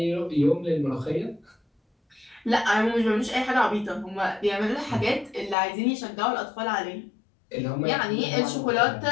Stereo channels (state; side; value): drops out; right; at 5.6 s